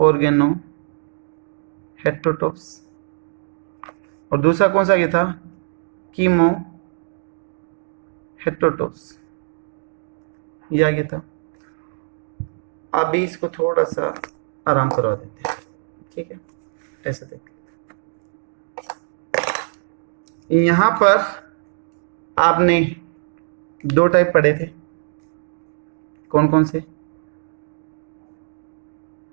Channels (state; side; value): silent; left; digital silence